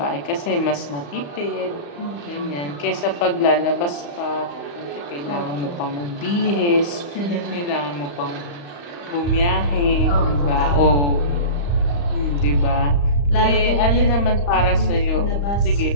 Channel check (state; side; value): late; right; 35 ms